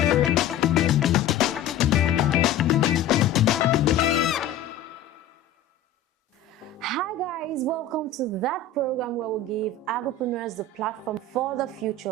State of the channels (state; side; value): quieter; right; 5.7 dB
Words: Hi guys, welcome to that program where we give agripreneurs the platform for the